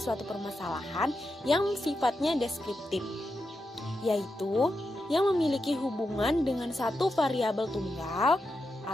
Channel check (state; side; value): normal; both; correlation 0.87